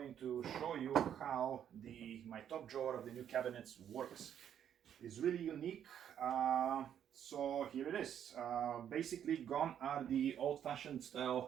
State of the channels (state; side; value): quieter; left; 9.4 dB